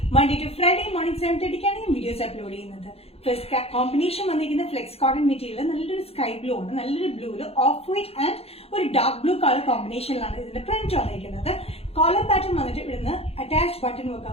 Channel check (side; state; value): right; late; 0.29 ms